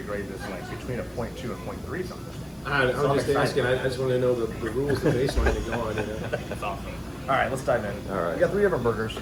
grade this like between a 0.2 and 0.3 something. I was So I'm just excited. asking. I just want to know the rules, the baseline to go on. That's awesome. All right, let's dive in. All right. We got 3 different burgers,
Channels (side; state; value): left; noise; hiss, 29 dB below the sound